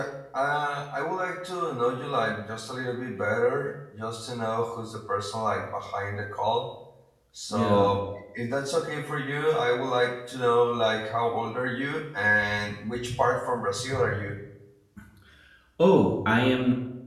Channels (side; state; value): both; identical; correlation 1.00